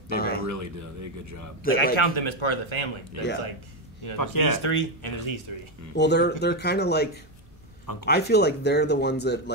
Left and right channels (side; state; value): both; normal; correlation 0.08